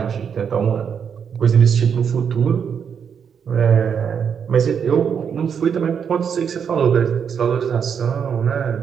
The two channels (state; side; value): quieter; left; 7.3 dB